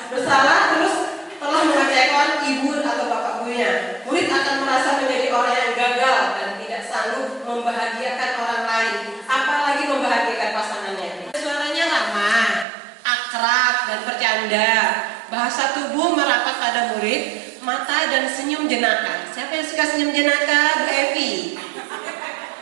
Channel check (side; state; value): left; drops out; at 12.7 s